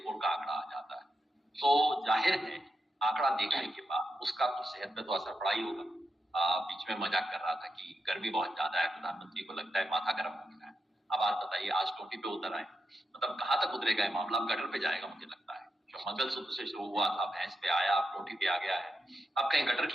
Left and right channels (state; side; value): normal; both; correlation 0.86